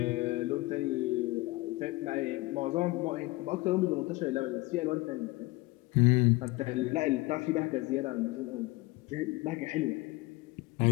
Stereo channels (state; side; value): quieter; right; 21.4 dB